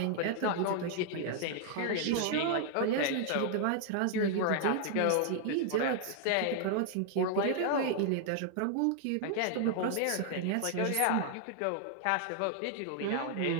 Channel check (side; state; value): both; different; correlation 0.00